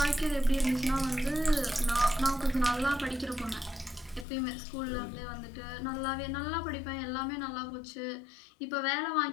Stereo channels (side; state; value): right; drops out; at 4.2 s